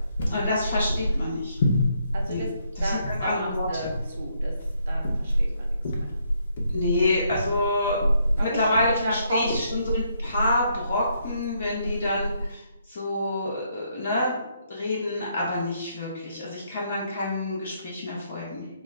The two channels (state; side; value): inverted; both; correlation -0.74